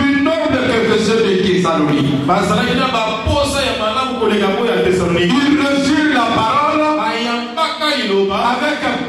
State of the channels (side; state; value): both; identical; correlation 1.00